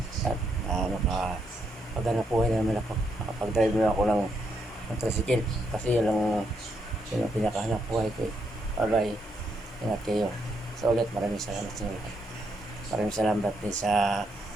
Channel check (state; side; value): normal; both; correlation 0.77